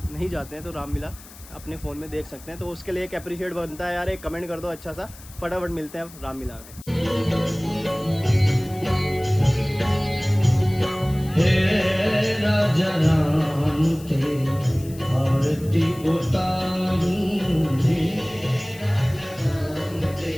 नहीं जाते हैं, तो रामलीला अपने फ़ोन में देख सकते हैं। तो उसके लिए एक अप्रिशिएट बनता है यार, एक कमेंट कर दो अच्छा सा। फटाफट मिलते हैं रामलीला में। हे राजा राम तेरी आरती उतारूं, हे राजा राम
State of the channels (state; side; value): noise; left; hiss, 20 dB below the sound